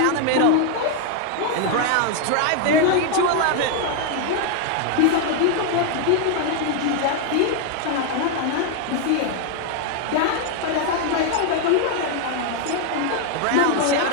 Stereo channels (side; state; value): both; different; correlation 0.00